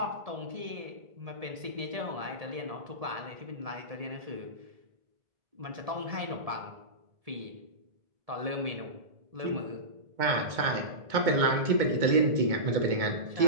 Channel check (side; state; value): left; late; 2.2 ms